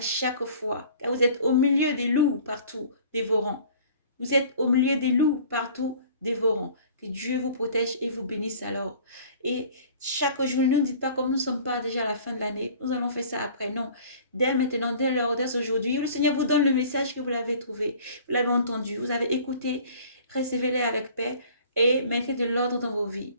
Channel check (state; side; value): inverted; both; correlation -0.48